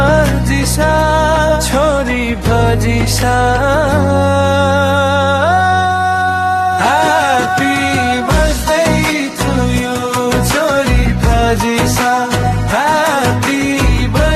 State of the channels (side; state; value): both; identical; correlation 1.00